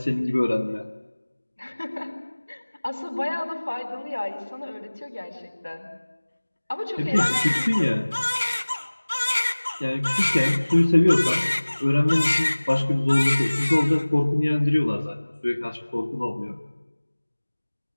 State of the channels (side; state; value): both; inverted; correlation -1.00